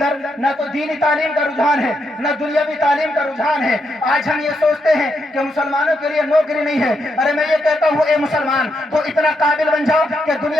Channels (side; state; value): both; normal; correlation 0.81